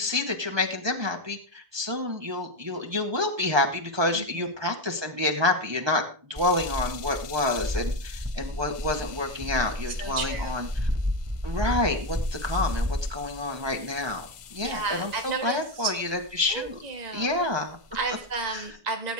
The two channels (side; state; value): left; late; 1.2 ms